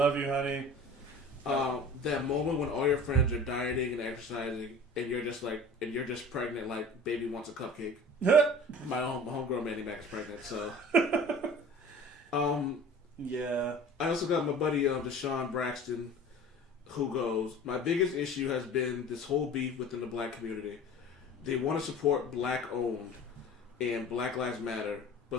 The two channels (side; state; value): both; normal; correlation 0.42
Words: you, honey. That moment when all your friends are dieting and exercising, and you're just pregnant, like baby wants a cupcake. My homegirl Mandy Mac is pregnant, so. Yeah. I also got my buddy Deshaun Braxton, who goes, my biggest issue has been this whole beef within the black community. They want to support black owned and Black Lives Matter,